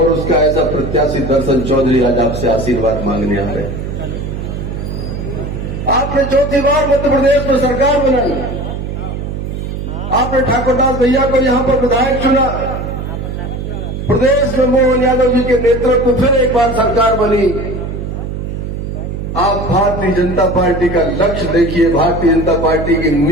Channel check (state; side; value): noise; right; hum, 6 dB below the sound